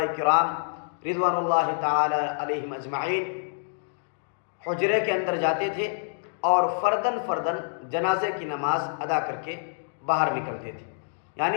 کرام رضوان اللہ تعالی علیہم اجمعین حجرے کے اندر جاتے تھے اور فرداً جنازے کی نماز ادا کر کے باہر نکلتے تھے،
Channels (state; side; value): silent; right; digital silence